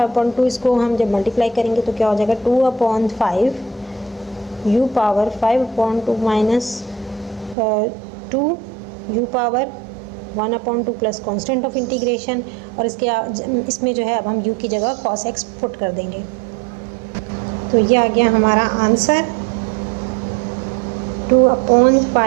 इसको हम जब मल्टीप्लाई करेंगे तो क्या हो जाएगा, 2/5 u power 5/2 minus 2 u power 1/2 plus constant of integration, और इसमें जो है अब हम u की जगह cos x पुट कर देंगे। तो ये आ गया हमारा answer,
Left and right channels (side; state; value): left; drops out; at 7.6 s